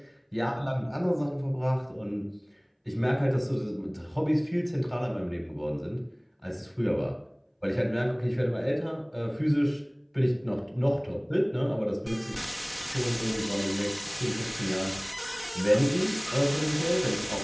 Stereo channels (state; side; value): identical; both; correlation 1.00